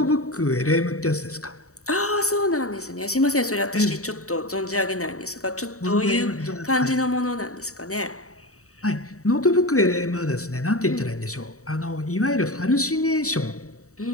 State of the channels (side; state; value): right; late; 0.65 ms